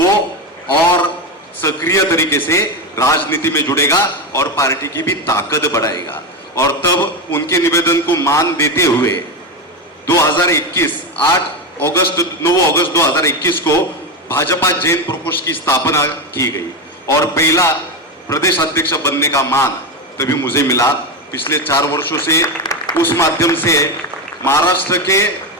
और सक्रिय तरीके से राजनीति में जुड़ेगा और पार्टी की भी ताकत बढ़ाएगा। और तब उनके निवेदन को मान देते हुए 2021 9 अगस्त 2021 को भाजपा जैन प्रकोष्ठ की स्थापना की गई और पहला प्रदेश अध्यक्ष बनने का मान तभी मुझे मिला। पिछले 4 वर्षों से उस माध्यम से महाराष्ट्र के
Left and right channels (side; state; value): both; normal; correlation 0.15